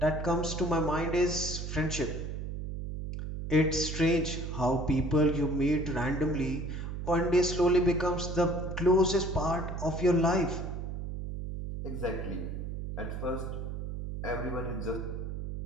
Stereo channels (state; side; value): noise; right; hum, 5 dB below the sound